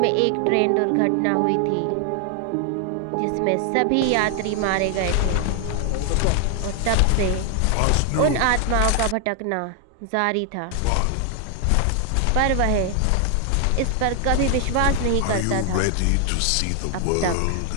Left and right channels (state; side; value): different; both; correlation 0.00